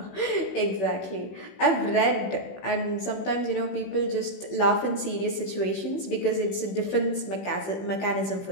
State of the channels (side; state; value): right; late; 16 ms